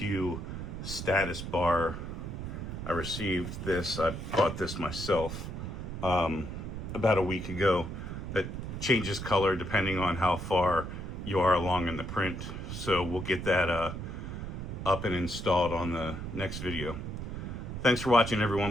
status bar. I received this, I bought this myself about a week ago, that changes color depending on how far you are along in the print. So we'll get that up and installed on the next video. Thanks for watching,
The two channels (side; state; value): right; noise; rumble, 6 dB below the sound